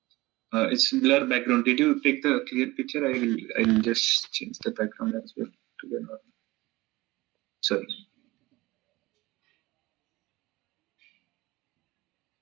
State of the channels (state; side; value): quieter; left; 19.9 dB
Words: It's blur background. Did you take the clear picture? I'll just change the background as well to the normal. Sorry.